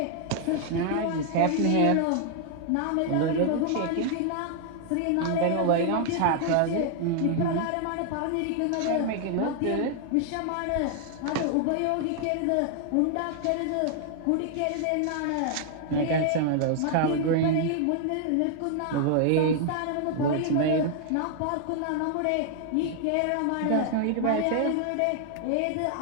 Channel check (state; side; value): different; both; correlation 0.00